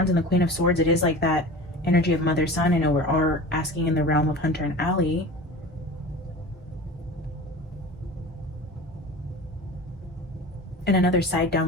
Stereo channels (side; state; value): both; normal; correlation 0.36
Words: and the Queen of Swords, it is like that energy of mother son. I know we're all asking in the realm of Hunter and Alli. And another side